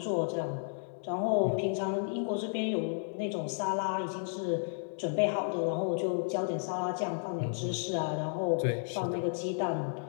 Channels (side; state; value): right; silent; digital silence